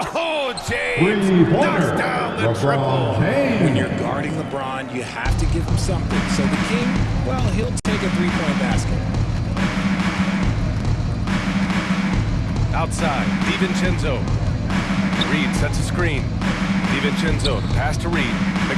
Oh, James knocks down the triple. When you're guarding LeBron, you have to give him something. So the King, well, he'll take a 3-point basket. Outside, DiVincenzo. Reed sets a screen. DiVincenzo, the pass to Reed.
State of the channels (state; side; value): identical; both; correlation 1.00